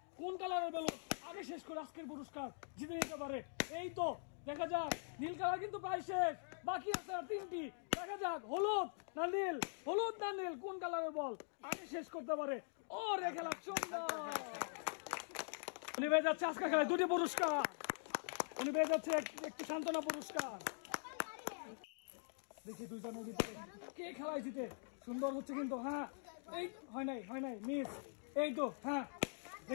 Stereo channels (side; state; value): right; silent; digital silence